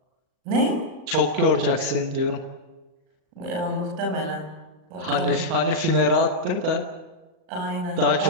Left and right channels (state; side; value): late; left; 38 ms